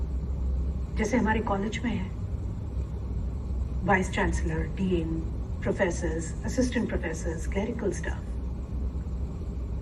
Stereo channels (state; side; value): identical; both; correlation 1.00